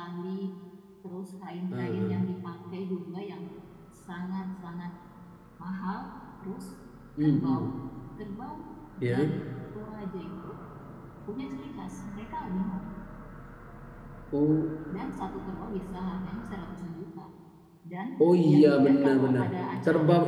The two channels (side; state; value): both; identical; correlation 1.00